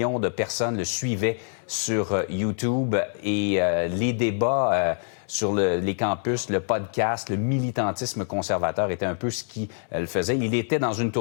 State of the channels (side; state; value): right; silent; 61 dB below the other